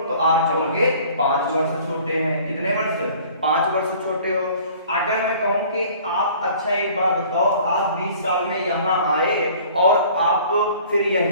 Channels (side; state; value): both; inverted; correlation -0.50